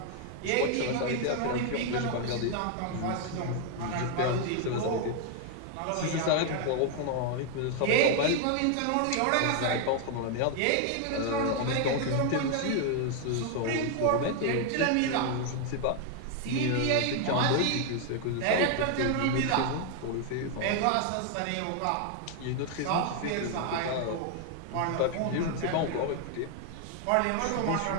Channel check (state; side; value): different; both; correlation 0.00